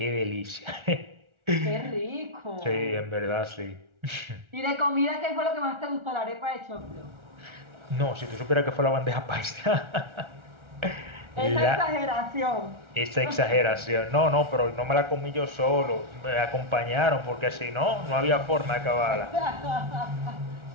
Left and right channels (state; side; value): late; left; 1.4 ms